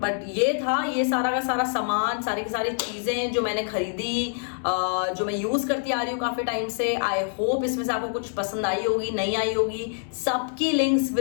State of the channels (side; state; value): right; silent; digital silence